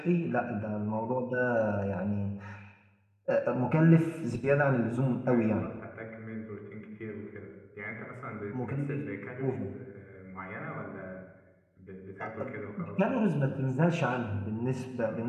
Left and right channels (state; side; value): identical; both; correlation 1.00